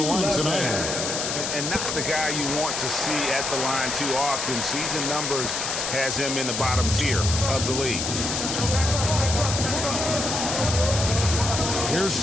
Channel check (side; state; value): left; noise; hiss, 2 dB below the sound